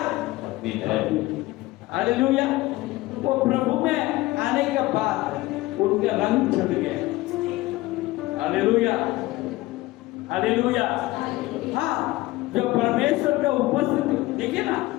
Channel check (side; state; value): right; quieter; 18.9 dB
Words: पत्नी है। हालेलुया। वो प्रभु में आने के बाद उनके रंग छट गए। Hallelujah, hallelujah. हाँ, जब परमेश्वर का उपस्थिति देखिए ना,